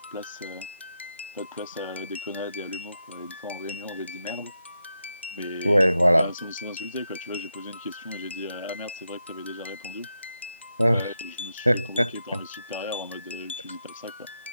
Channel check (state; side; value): inverted; both; correlation -0.84